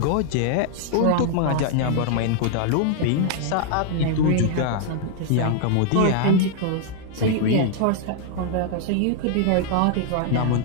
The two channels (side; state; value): both; different; correlation -0.01